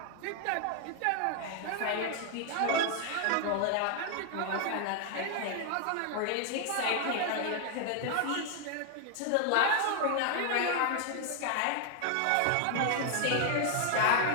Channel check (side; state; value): both; different; correlation 0.00